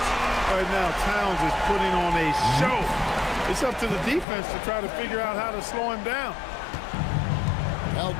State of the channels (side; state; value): right; drops out; at 4.2 s